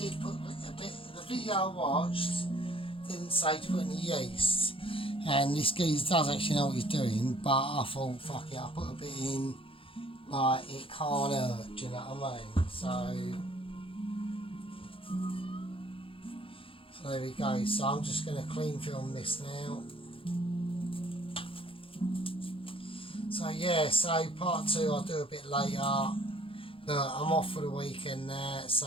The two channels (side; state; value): right; late; 0.26 ms